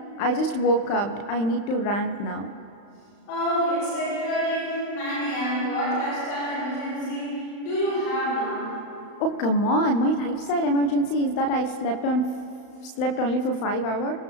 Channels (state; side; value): late; right; 35 ms